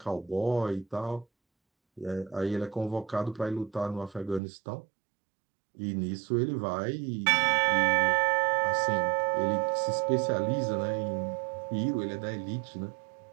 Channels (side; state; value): left; drops out; at 4.4 s